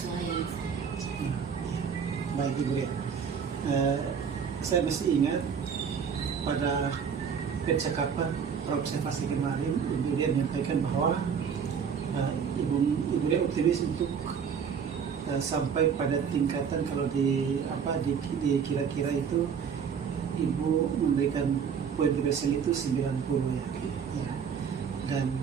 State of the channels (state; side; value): quieter; left; 6.9 dB